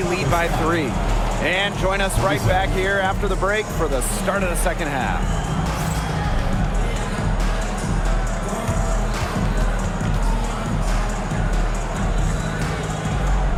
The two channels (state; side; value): identical; both; correlation 1.00